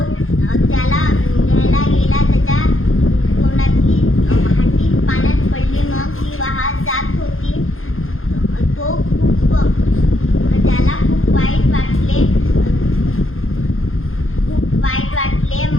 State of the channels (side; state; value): right; late; 0.60 ms